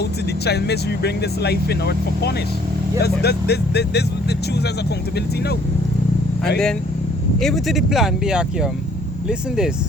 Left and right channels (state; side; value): normal; both; correlation 0.60